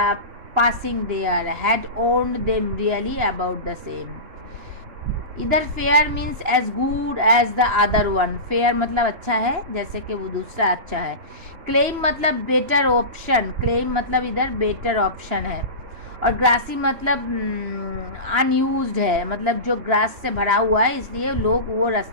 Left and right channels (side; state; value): left; late; 2.9 ms